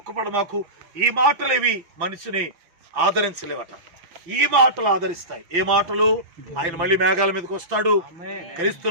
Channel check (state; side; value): late; left; 5.9 ms